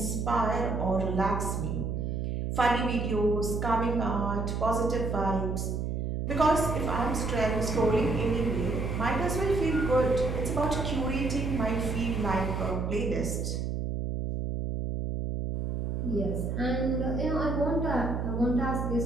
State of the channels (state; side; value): noise; right; hum, 1 dB below the sound